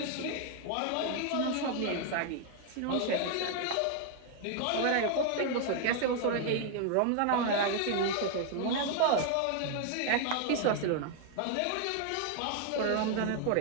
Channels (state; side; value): different; both; correlation 0.00